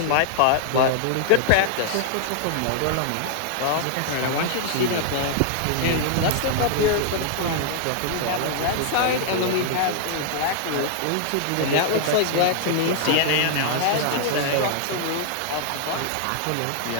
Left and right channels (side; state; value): both; different; correlation -0.01